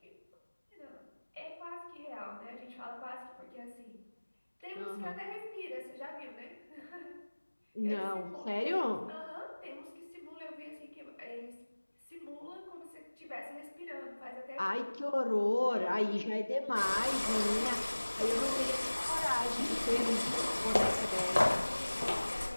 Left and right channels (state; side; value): inverted; both; correlation -1.00